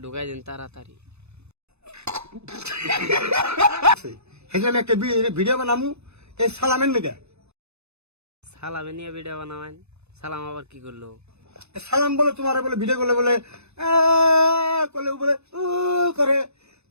ঢুকাই দেন তাড়াতাড়ি। সেখানে একটা ভিডিও বানামু এই সালামের লেগে। সালামে নিয়ে ভিডিও বানাবেন? সালাম আবার কি করলো? সালাম বলে তোমার বলে ভিডিও করলে বলে করলে বলে করে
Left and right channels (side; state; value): left; late; 0.80 ms